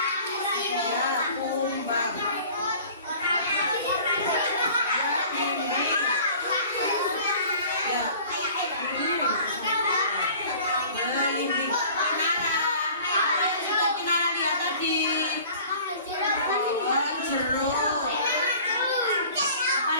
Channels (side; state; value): both; inverted; correlation -0.47